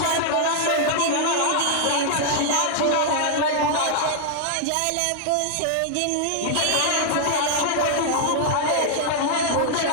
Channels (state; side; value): different; both; correlation 0.00